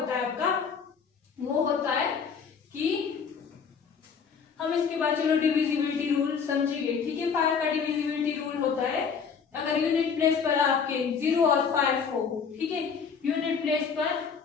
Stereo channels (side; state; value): right; quieter; 6.2 dB